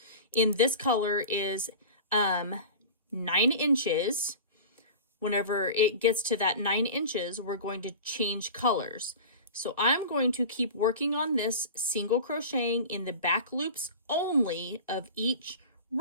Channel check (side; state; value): both; inverted; correlation -0.34